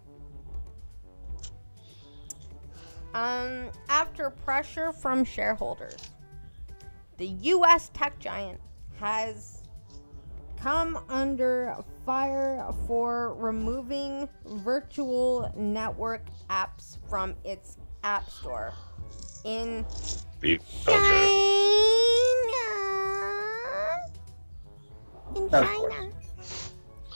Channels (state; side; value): inverted; both; correlation -1.00